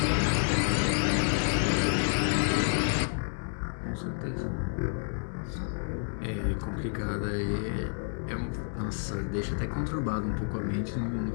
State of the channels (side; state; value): right; silent; digital silence